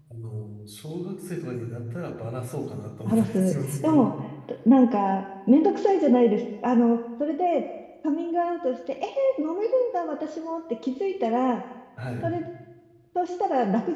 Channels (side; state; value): both; identical; correlation 1.00